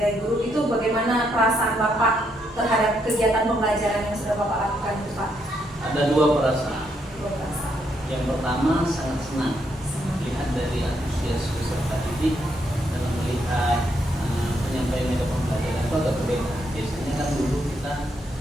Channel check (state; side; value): normal; both; correlation 0.76